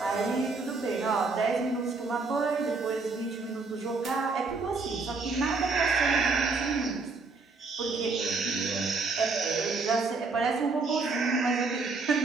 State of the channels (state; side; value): quieter; left; 4.0 dB